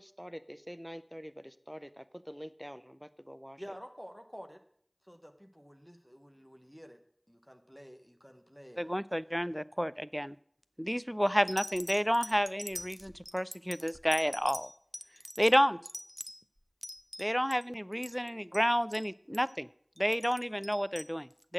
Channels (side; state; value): both; identical; correlation 1.00